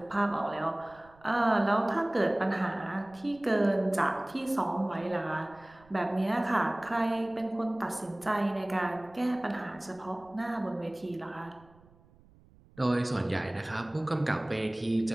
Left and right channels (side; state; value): right; noise; rumble, 27 dB below the sound